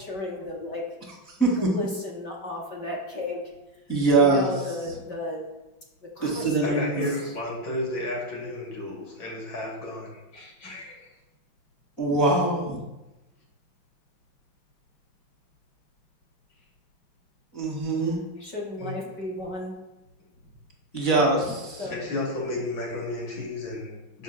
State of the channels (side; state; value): right; late; 5.1 ms